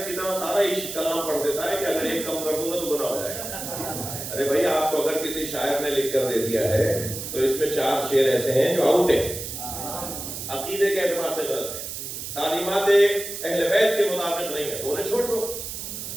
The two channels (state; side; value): noise; right; hiss, 7 dB below the sound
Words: کی طرح سارا ہی کلام پڑھ دیتا ہے کہ اگر ایک کم کر دوں گا تو گناہ ہو جائے گا. ارے بھائی آپ کو اگر کسی شاعر نے لکھ کر دے دیا ہے تو اس میں 4 شعر ایسے ہیں جو آؤٹ ہیں، عقیدے کے اعتبار سے غلط ہیں، تعلیمات اہل بیت کے مطابق نہیں ہے، تو انہیں چھوڑ دو.